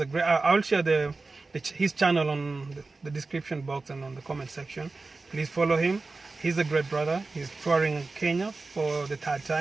a great. I'll share his channel on the description box and on the comment section. Please follow him. He's a great brother. He's touring Kenya for the 3rd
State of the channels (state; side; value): quieter; left; 3.7 dB